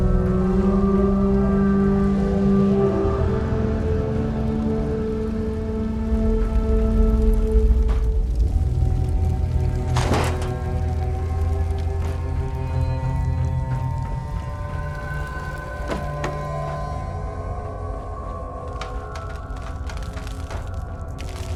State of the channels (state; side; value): identical; both; correlation 1.00